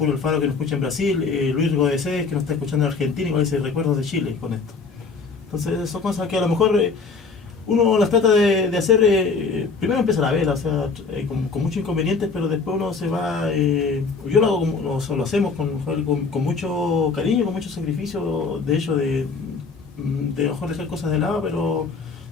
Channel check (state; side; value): quieter; right; 4.6 dB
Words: Alfaro, que nos escucha en Brasil, Luis Godesés, que nos está escuchando en Argentina, y con ese recuerdos de Chile con esto. Entonces son cosas que a lo mejor uno las trata de hacer, primero empezar a ver, o sea, con muchos inconvenientes, pero después uno se va, yo lo hago lo hacemos con mucho cariño, con mucho sacrificio, de hecho, de mejor dejar cosas de lado, pero